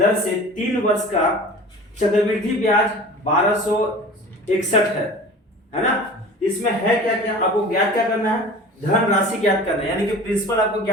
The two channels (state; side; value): normal; both; correlation 0.40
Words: से 3 वर्ष का चक्रवृद्धि ब्याज 1261 है ना। इसमें है क्या क्या, आपको ज्ञात क्या करना है, धन राशि ज्ञात करना है, यानी कि प्रिंसिपल आपको